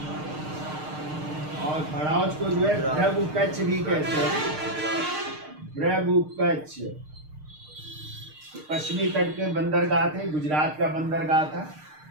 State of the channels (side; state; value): left; late; 6.6 ms